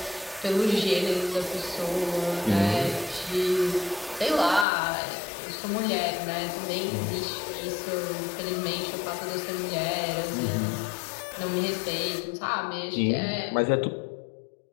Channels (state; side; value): drops out; right; at 4.7 s